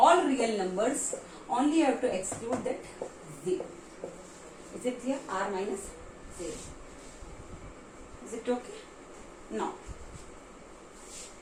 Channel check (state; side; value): identical; both; correlation 1.00